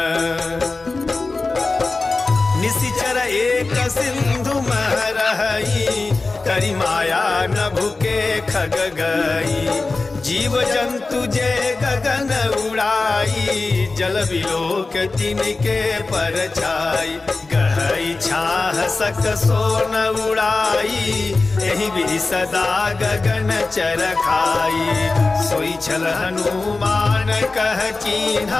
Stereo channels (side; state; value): right; quieter; 3.6 dB